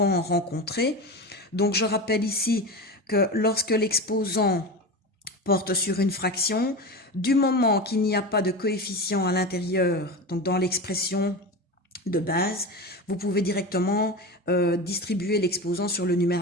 rencontré. Donc, je rappelle ici que lorsque l'exposant porte sur une fraction, du moment qu'il n'y a pas de coefficient à l'intérieur, donc dans l'expression de base, vous pouvez directement distribuer l'exposant sur le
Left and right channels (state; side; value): normal; both; correlation 0.25